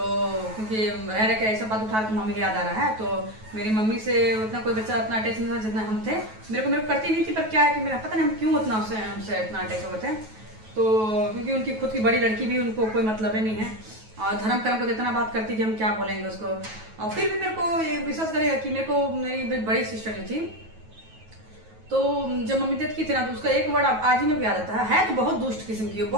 क्योंकि रह के ऐसा बात उठा तो मम्मी की याद आ रहा है। तो मेरी मम्मी से उतना कोई बच्चा उतना अटैच नहीं था जितना हम थे। मेरे को करती नहीं थी, पर क्या है कि मेरा पता नहीं हम क्यों उतना हमसे इतना अटैच हो गए थे। तो क्योंकि उनकी खुद की बड़ी लड़की भी, उनको कोई मतलब ही नहीं है, और धर्म कर्म को इतना बात करती कि हम क्या बोलेंगे उसको। और फिर भी मेरे को ये विश्वास करेगा कि मेरे को मेरी बड़ी सिस्टर थी, तो जब मम्मी डेथ की थी ना, तो उसका एक वर्ड आज ही मेरे को याद आता है तो बहुत दुष्ट किस्म की,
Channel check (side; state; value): left; late; 9.2 ms